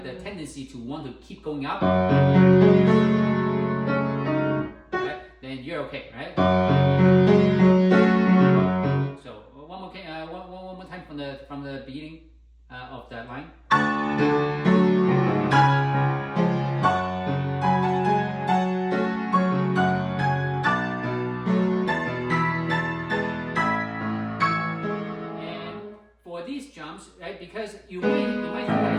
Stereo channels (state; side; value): identical; both; correlation 1.00